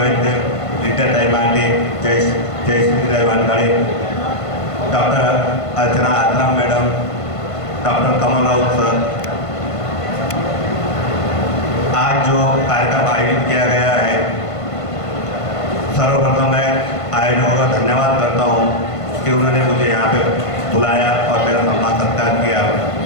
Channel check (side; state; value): right; late; 1.5 ms